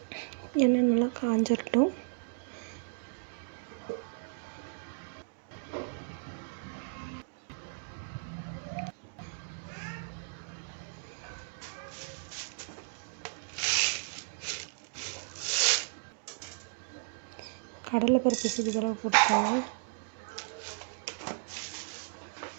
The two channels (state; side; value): silent; left; digital silence